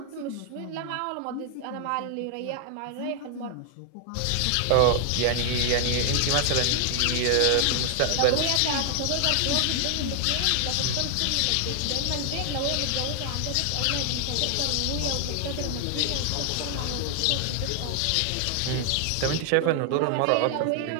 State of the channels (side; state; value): both; different; correlation 0.00